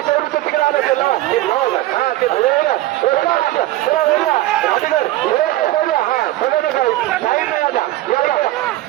उचल तिकडे आलं ते लाव हे लाव हां ते धुळेला राठी कर हां समझ काय साइड में आजा या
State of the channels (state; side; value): quieter; left; 16.0 dB